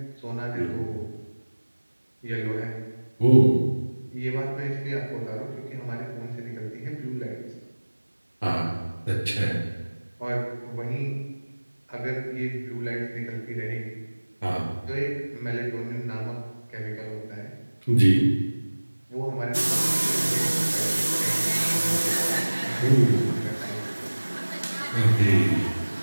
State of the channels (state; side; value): inverted; both; correlation -1.00